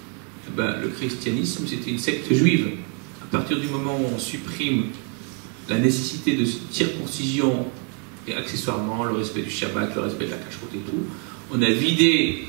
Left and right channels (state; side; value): quieter; left; 38.5 dB